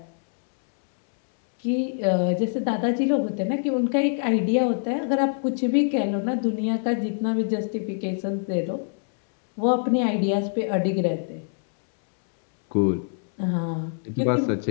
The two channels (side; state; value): right; silent; digital silence